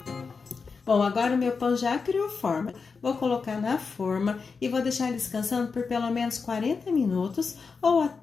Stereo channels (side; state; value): right; quieter; 5.0 dB